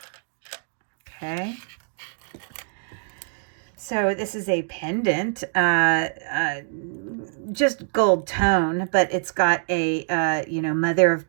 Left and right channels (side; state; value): left; silent; digital silence